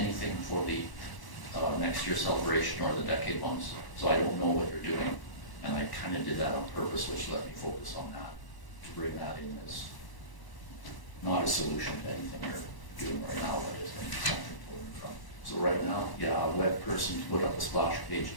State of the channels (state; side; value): late; right; 1.0 ms